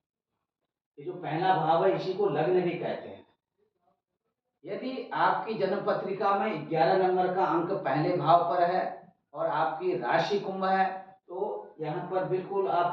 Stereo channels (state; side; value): identical; both; correlation 1.00